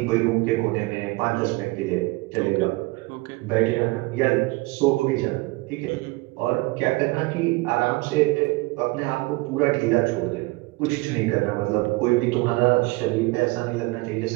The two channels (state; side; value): quieter; left; 23.3 dB